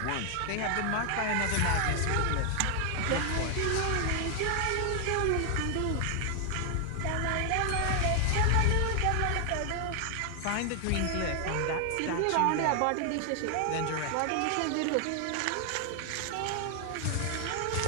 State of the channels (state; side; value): different; both; correlation 0.00